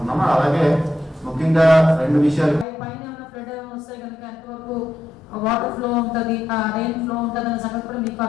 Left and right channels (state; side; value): normal; both; correlation 0.83